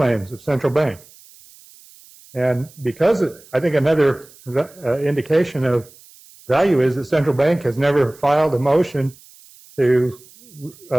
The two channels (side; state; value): right; noise; hiss, 25 dB below the sound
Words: of Central Bank. And because I think another indication of value is that Central Bank has never filed a motion to